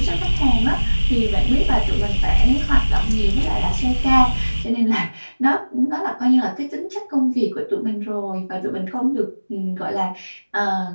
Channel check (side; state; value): both; inverted; correlation -1.00